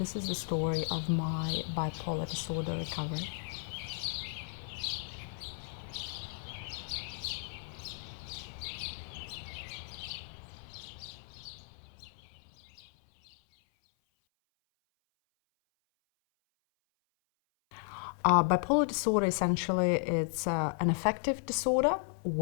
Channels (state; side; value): silent; right; 55 dB below the other